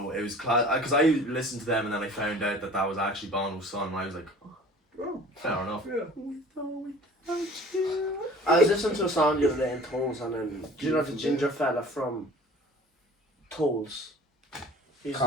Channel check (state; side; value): normal; both; correlation 0.45